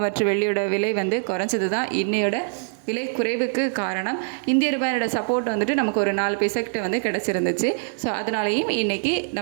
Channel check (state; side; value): silent; left; digital silence